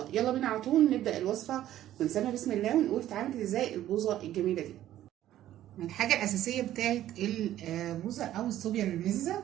يلا بينا على طول نبدا الوصفه ونسمي بسم الله ونقول اتعملت ازاي البوظه الجميله دي. الحاجه الاساسيه بتاعت البوظه او الصوبيا المززه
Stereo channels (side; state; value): left; quieter; 12.9 dB